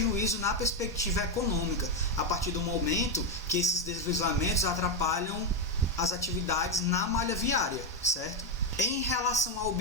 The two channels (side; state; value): both; normal; correlation 0.07